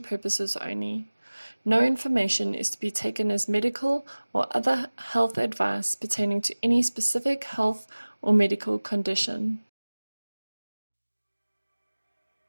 purposes only. No information is to be taken as medical or other health advice pertaining to any specific health or medical condition.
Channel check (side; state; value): both; inverted; correlation -1.00